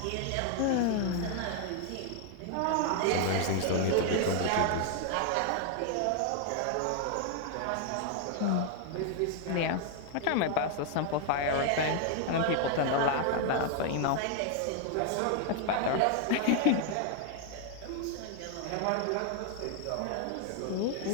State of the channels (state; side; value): different; both; correlation 0.00